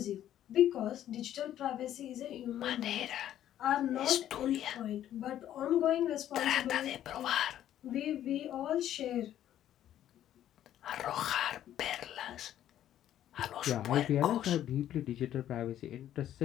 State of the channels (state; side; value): quieter; right; 11.6 dB